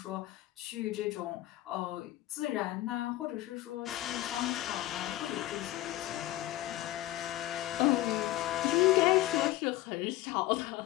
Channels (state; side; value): quieter; right; 15.8 dB